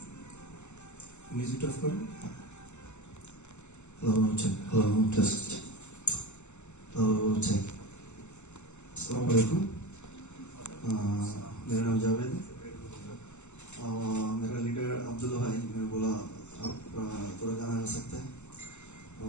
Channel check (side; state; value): right; late; 0.83 ms